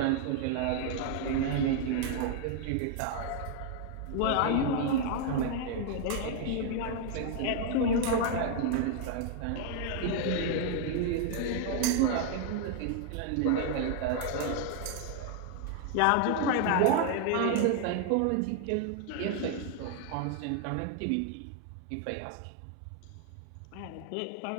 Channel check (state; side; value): different; both; correlation 0.00